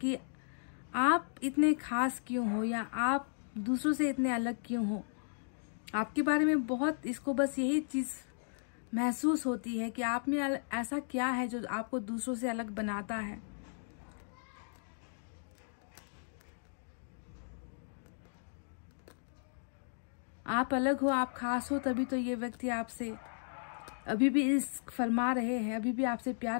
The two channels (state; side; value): silent; right; digital silence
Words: आप इतने खास क्यों हो या आप दूसरों से इतने अलग क्यों हो। आपके बारे में बहुत इसको बस यही चीज़ महसूस होती है कि आप में ऐसा क्या है जो आपको दूसरों से अलग बनाता है। आप अलग हो, आप खास हो, तभी तो ये व्यक्ति आपसे अभी भी इश्क फरमा रहे हैं, अभी भी आपसे